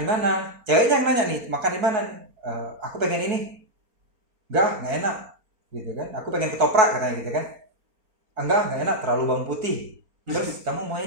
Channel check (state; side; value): late; left; 4.3 ms